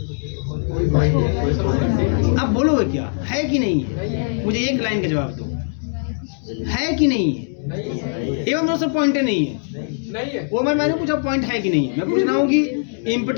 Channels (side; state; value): right; silent; digital silence